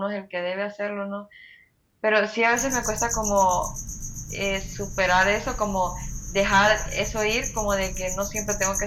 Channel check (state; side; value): identical; both; correlation 1.00